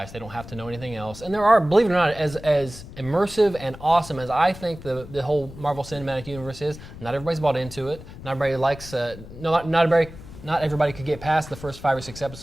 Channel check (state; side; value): noise; left; rumble, 15 dB below the sound